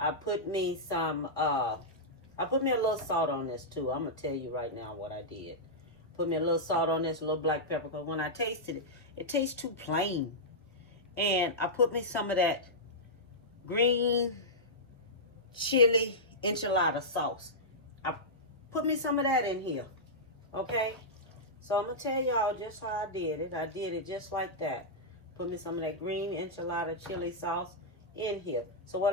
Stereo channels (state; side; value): normal; both; correlation -0.11